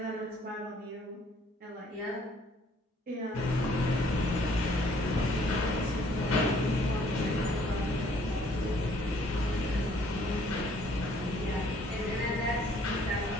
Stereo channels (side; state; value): both; normal; correlation 0.61